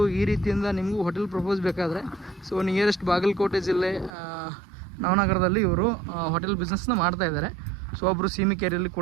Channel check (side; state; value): left; drops out; at 4.1 s